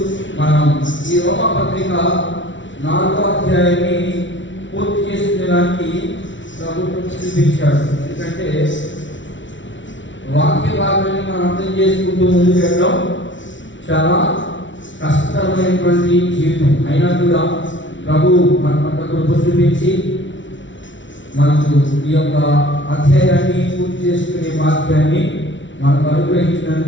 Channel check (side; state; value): right; late; 0.55 ms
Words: మనం ఈ రోమా పత్రిక 4వ అధ్యాయాన్ని పూర్తి చేసుకునేదానికి ప్రభుత్వం చూపించాడు. ఎందుకంటే వాక్య భాగాన్ని మనం అర్థం చేసుకుంటూ ముందుకు వెళ్ళడం చాలా కష్టతరమైనటువంటి జీవితం. అయినా కూడా ప్రభు మన పట్ల కృప చూపించి మనకు ఈ యొక్క అధ్యాయాన్ని పూర్తి చేసుకునే వాక్యాన్ని మనకు